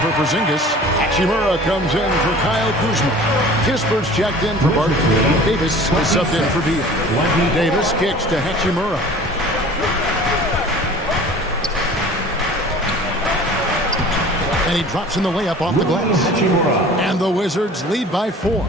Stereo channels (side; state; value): both; normal; correlation 0.44